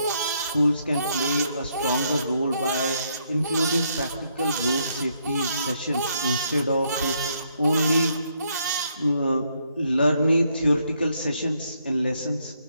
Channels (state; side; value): inverted; both; correlation -0.74